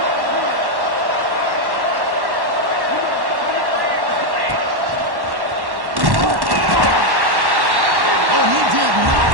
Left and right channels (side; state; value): left; late; 1.1 ms